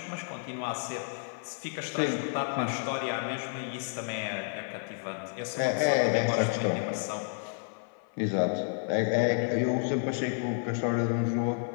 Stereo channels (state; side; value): silent; right; 55 dB below the other